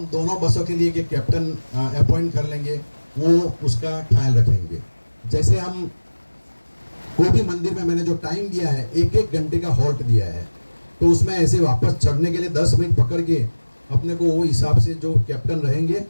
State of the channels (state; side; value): inverted; both; correlation -1.00